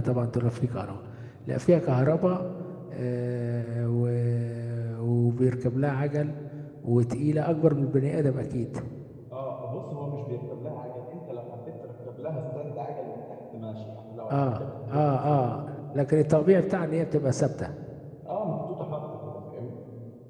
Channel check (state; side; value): identical; both; correlation 1.00